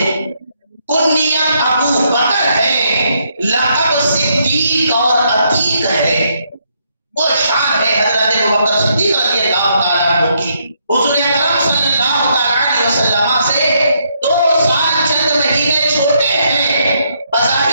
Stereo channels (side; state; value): both; inverted; correlation -0.74